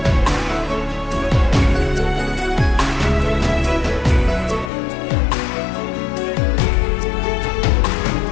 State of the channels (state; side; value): drops out; right; at 4.7 s